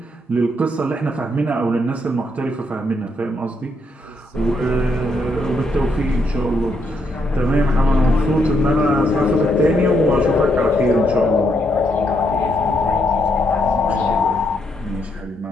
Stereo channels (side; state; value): both; normal; correlation 0.76